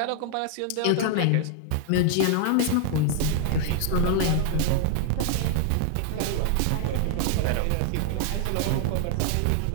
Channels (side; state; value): both; different; correlation 0.00